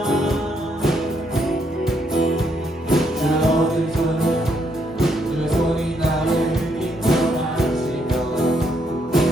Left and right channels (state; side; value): normal; both; correlation 0.74